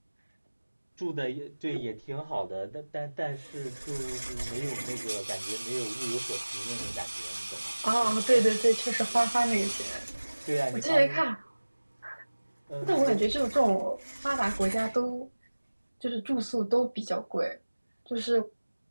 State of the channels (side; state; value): both; inverted; correlation -1.00